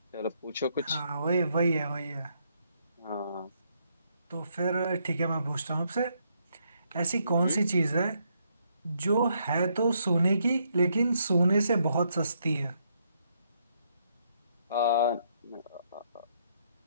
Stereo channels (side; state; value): both; inverted; correlation -0.74